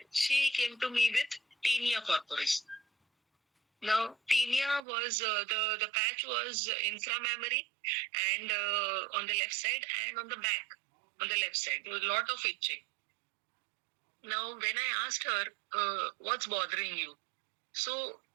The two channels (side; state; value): left; drops out; at 4.8 s